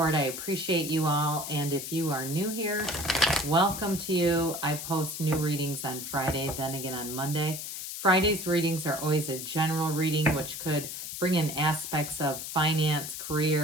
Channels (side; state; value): left; noise; hiss, 7 dB below the sound